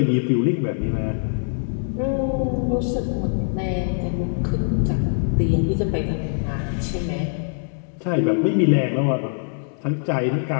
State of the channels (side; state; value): right; silent; digital silence